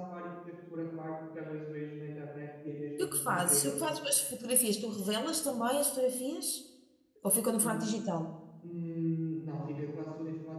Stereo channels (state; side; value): identical; both; correlation 1.00